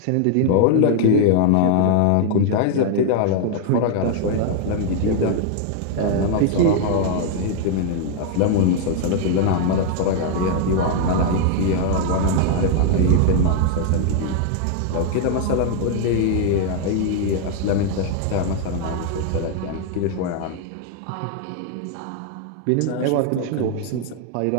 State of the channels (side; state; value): both; different; correlation 0.00